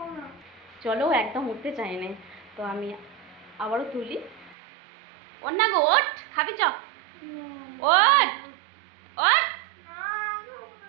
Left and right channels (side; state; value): left; drops out; at 4.5 s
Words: চলো, একদম উঠতে চাই না। তো আমি আবারও তুলি। ওর না গো, ওঠ, খাবি চ, ওঠ ওঠ